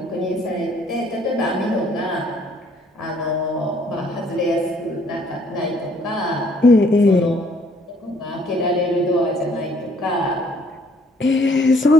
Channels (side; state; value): both; normal; correlation 0.63